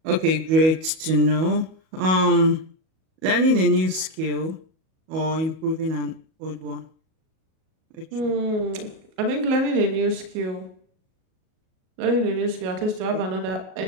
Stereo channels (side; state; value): left; late; 37 ms